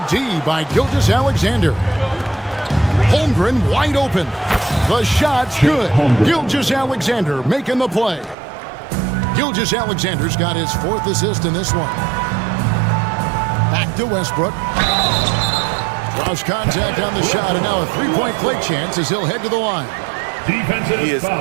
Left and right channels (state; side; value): drops out; left; at 8.3 s